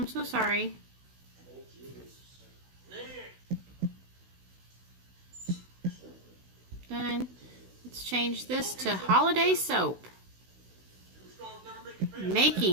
so sorry. Done. Let's change this to holiday soap.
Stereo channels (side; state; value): left; late; 16 ms